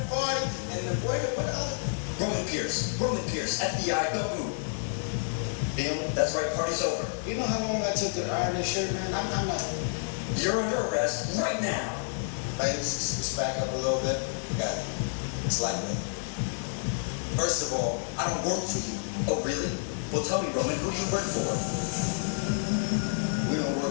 party. And the what other? Roman Pierce, FBI, don't move. Bill, that's right, party's over. You know how long I took to iron this shirt, man? I'm not. You're under arrest right now. Ladies, let's back up a little bit. Got it. It's like me. First of all, I don't work for you. Oh, really? Well, tell me, Roman, who do you work for? We don't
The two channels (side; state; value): right; silent; 58 dB below the other